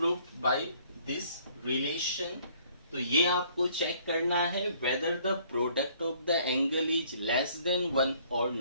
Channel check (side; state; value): both; inverted; correlation -0.60